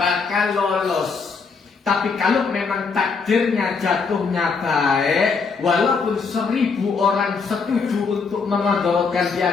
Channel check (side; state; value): right; quieter; 5.0 dB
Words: lolos. Tapi kalau memang takdirnya jatuhnya baik, walaupun 1000 orang setuju untuk memudaratkan